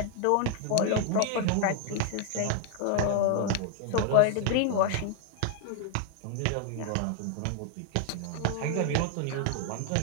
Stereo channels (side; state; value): both; different; correlation 0.00